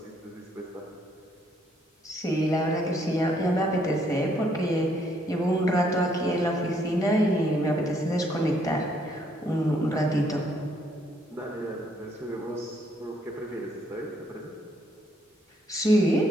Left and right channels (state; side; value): normal; both; correlation 0.69